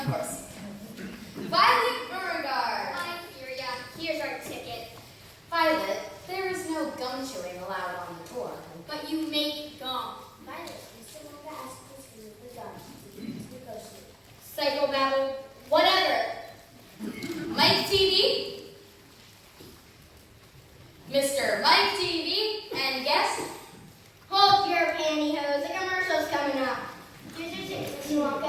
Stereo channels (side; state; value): both; identical; correlation 1.00